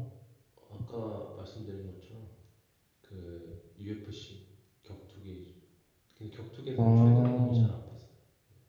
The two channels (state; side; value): identical; both; correlation 1.00